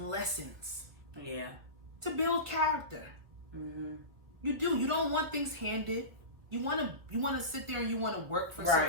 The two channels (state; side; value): late; left; 1.6 ms